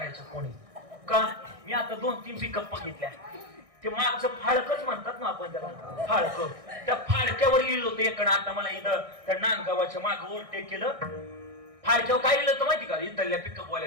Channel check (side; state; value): left; late; 1.6 ms